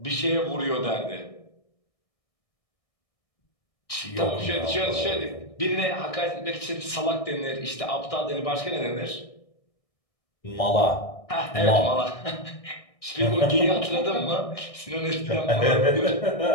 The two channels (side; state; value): right; late; 1.6 ms